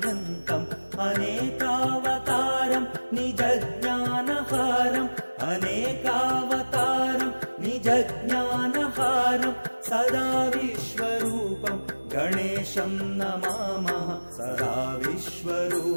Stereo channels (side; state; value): both; inverted; correlation -1.00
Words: अनेकावतारं निजज्ञानहारम् अनेकावतारं निजज्ञानहारं सदा विश्वरूपं गणेशं नमामः सदा